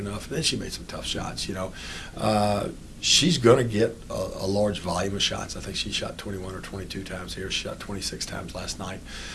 And then she made some tough shots, She's going to get a large volume of shots. I think she shot 21 or 22 times here. She shot 26 times last night.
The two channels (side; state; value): both; identical; correlation 1.00